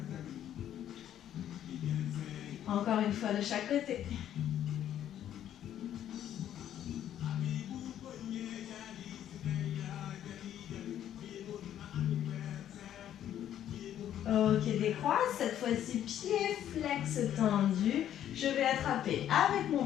Encore une fois de chaque côté. Ok, décroise. Cette fois-ci, pied flex tendu. Je vais attraper avec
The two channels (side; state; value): right; quieter; 10.9 dB